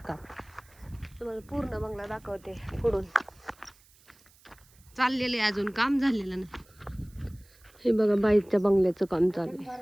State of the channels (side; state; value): right; noise; hiss, 28 dB below the sound